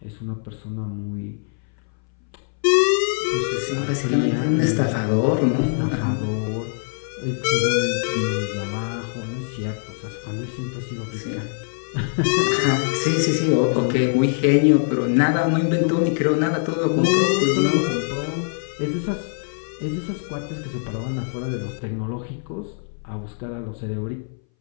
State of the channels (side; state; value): right; silent; 61 dB below the other